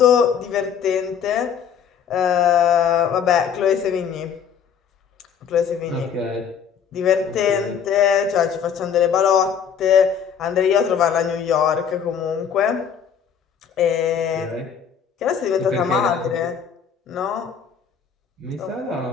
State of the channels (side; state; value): right; quieter; 7.6 dB